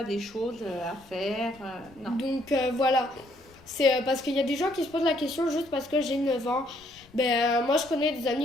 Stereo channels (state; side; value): noise; left; rumble, 26 dB below the sound